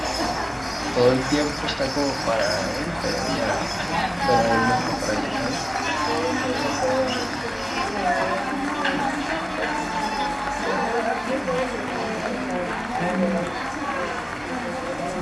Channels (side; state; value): both; identical; correlation 1.00